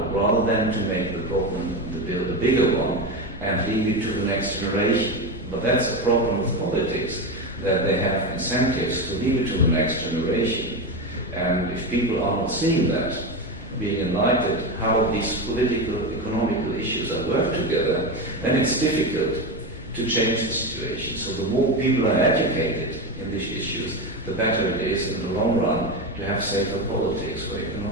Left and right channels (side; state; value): both; normal; correlation 0.17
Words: rather than to make the problem, the bill, a bigger one, and leave it to the next generation. But that's a problem with politics, that they have incentives to leave it to the next generation. And if people are not seeing that, being enlightened how these political, economical issues are worked together, then it's difficult to change the situation. So the more people are educated in these issues, the better it is in the long run to have safer politics for